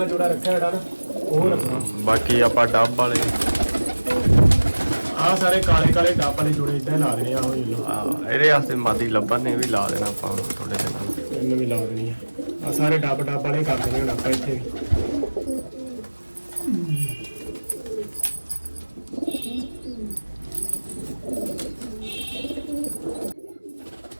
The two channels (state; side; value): inverted; both; correlation -1.00